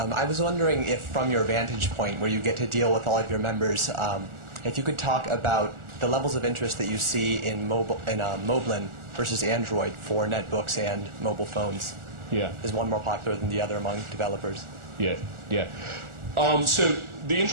was wondering if, from your vantage point, where you get to deal with all of your members, if you could talk about the levels of interest that you see in Moblin versus Android for netbooks and mobile phones. Yeah. Is one more popular than the other among developers? Yeah, yeah. So the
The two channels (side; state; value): left; late; 1.4 ms